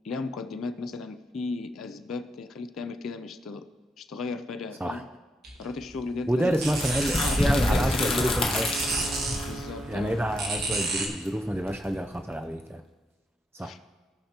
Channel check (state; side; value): normal; both; correlation 0.80